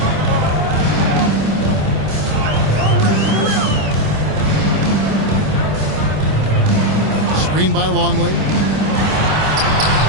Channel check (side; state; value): left; late; 26 ms